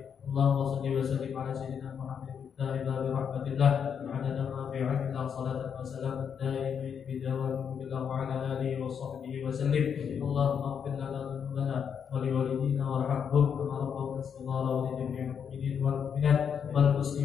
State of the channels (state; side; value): quieter; right; 7.4 dB